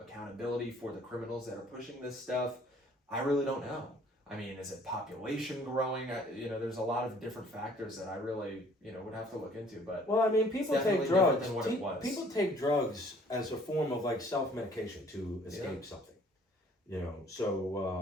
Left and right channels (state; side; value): normal; both; correlation 0.57